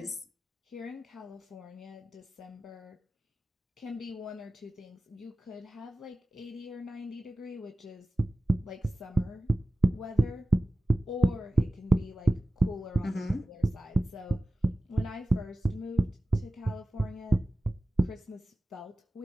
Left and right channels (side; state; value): both; normal; correlation 0.95